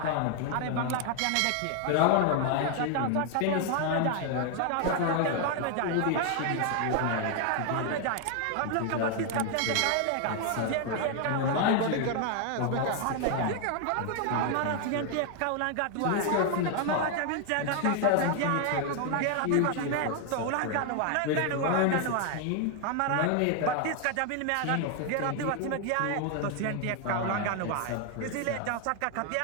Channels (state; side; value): different; both; correlation 0.01